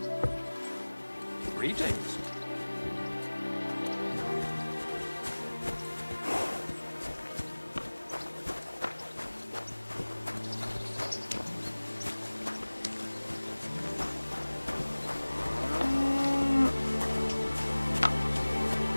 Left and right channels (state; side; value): inverted; both; correlation -1.00